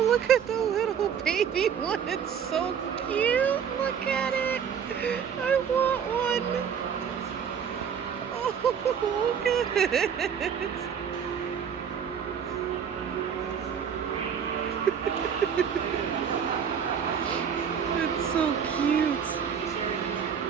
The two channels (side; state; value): left; quieter; 7.6 dB